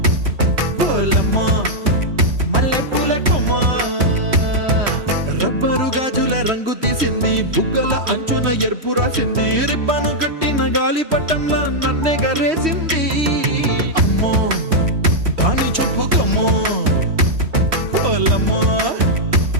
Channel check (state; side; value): late; left; 3.1 ms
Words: పోలమ్మ మల్లె పూల కొమ్మ, రబ్బరు గాజుల రంగు తీసింది, బుగ్గల అంచున ఎరుపు రాసింది, రిబ్బను కట్టిన గాలి పట్టంలా నన్నే గరేసింది. అమ్మో దాని చూపు కమ్మో, పోలమ్మో